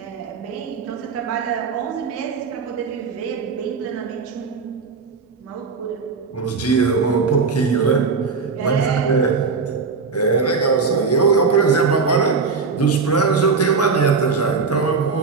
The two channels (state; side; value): quieter; left; 4.9 dB